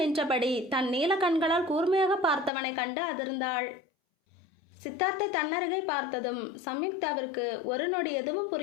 நின்றபடி தன் நீல கண்களால் கூர்மையாக பார்த்தவனை கண்டு அதிர்ந்தாள். சித்தார்த்தை தன்னருகே பார்த்ததும் சம்யுக்தாவிற்கு ஒரு நொடி எதுவும்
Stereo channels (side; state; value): right; drops out; at 2.5 s